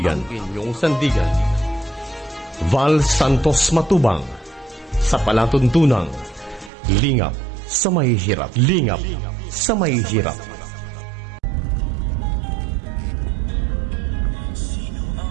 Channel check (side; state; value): left; drops out; at 6.7 s